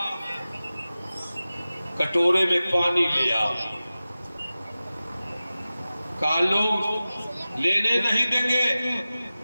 کٹورے میں پانی لیا. کہا لوگ لینے نہیں دیں گے.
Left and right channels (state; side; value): inverted; both; correlation -0.96